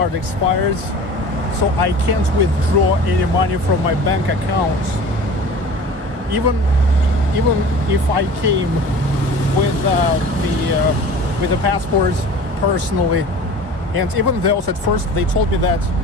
expires, so I can't withdraw any money from my bank account. Even if I came with the passports personally, and even though at first they told me that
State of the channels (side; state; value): left; late; 1.4 ms